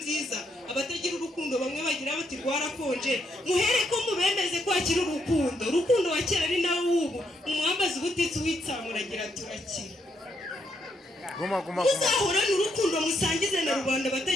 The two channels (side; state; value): both; normal; correlation 0.77